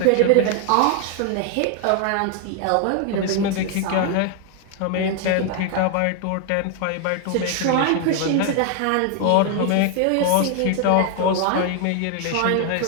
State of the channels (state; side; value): different; both; correlation 0.00